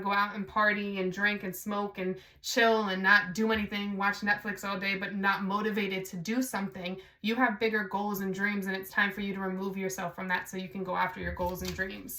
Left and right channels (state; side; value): identical; both; correlation 1.00